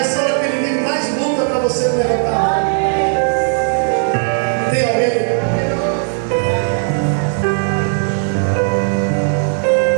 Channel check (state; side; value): silent; left; 60 dB below the other